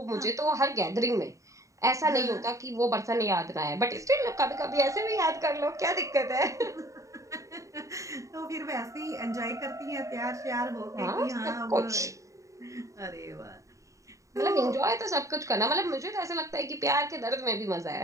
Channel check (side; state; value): left; late; 0.16 ms